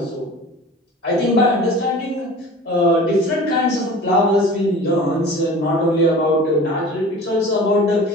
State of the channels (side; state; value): both; normal; correlation 0.40